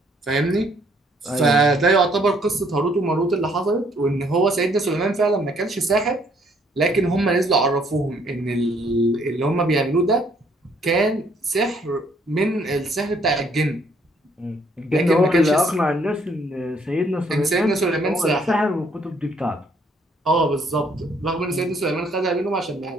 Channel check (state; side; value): normal; both; correlation 0.66